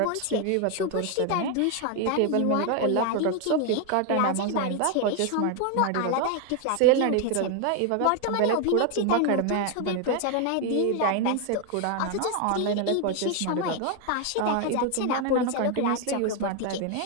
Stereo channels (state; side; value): different; both; correlation 0.01